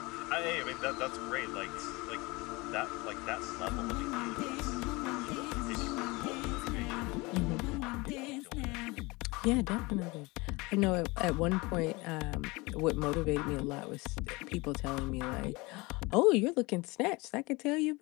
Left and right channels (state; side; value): quieter; right; 24.2 dB